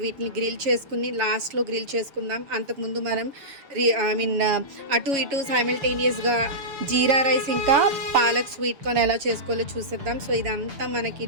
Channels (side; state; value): left; late; 6.8 ms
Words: వీటిని గ్రిల్ చేసుకుని లాస్ట్లో గ్రిల్ చేసుకుందాం. అంతకుముందు మనం అటు ఇటు సైమల్టేనియస్గా జీరా రైస్ ఇంకా పాలక్ స్వీట్ కార్న్ ఎలా చేసుకోవాలో చూసేద్దాం. సో ఇదంతా మనకి